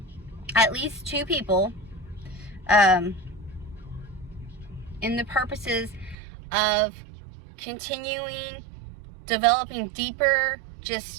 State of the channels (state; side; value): drops out; left; at 6.2 s